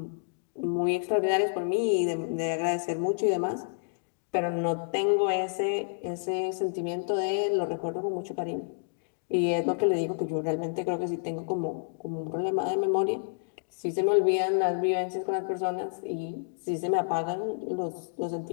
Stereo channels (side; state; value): right; silent; digital silence